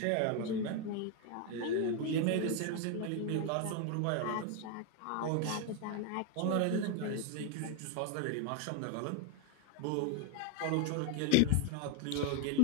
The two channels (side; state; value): both; different; correlation 0.01